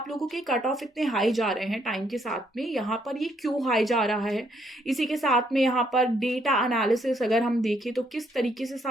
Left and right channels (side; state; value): both; normal; correlation 0.71